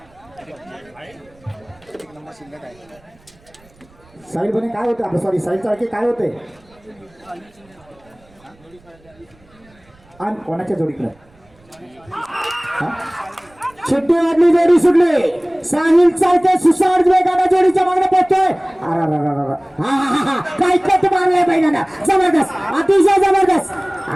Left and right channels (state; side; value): noise; right; rumble, 30 dB below the sound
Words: साहिल बने काय होते आपलं सॉरी साहिल चाळके काय होते आणि कोणाच्या जोडीकडे शिट्टी वाजली जोडी सुटली साहिल चाळके सुसाड वेगाने जोडीच्या मागणे पोहोचतोय. काय कट मारलाय बैलांना जबरदस्त अतिशय जबरदस्त.